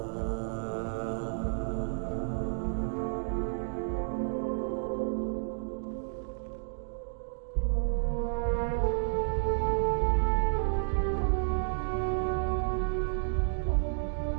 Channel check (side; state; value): left; silent; digital silence